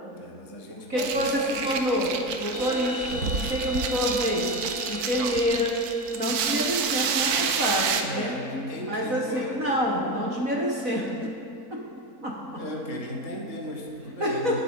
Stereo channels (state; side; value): late; left; 4.4 ms